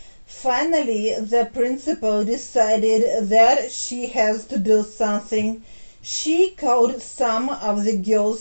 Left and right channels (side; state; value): both; inverted; correlation -1.00